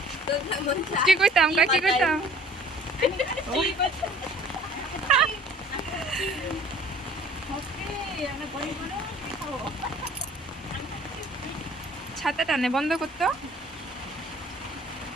কি কইতাম ছাতা টানে বন্ধ করতো।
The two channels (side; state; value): both; normal; correlation 0.51